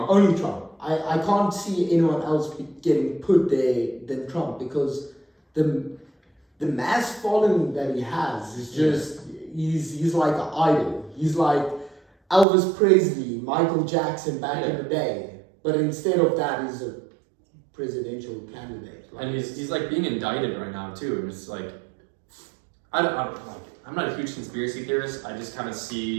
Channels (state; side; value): drops out; left; at 12.5 s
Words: Only Trump. I can't see anyone else getting put there than Trump because the mass following that he has is just he's like an idol. He's like Elvis Presley, Michael Jackson back in the day. But instead of that, he's a presidential candidate. And he's like being indicted right now too. And it's like I'm not a huge conspiracy theorist. I just kind of